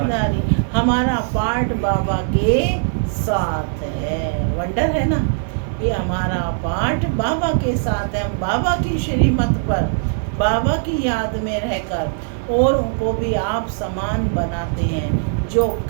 हमारा पाठ बाबा के साथ है। वंडर है ना, ये हमारा पाठ बाबा के साथ है। हम बाबा की श्रीमत पर, बाबा की याद में रहकर और उनको भी आप समान बनाते हैं। जो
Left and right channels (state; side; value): silent; left; 59 dB below the other